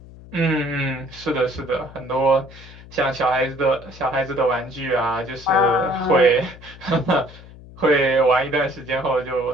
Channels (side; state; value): left; noise; hum, 19 dB below the sound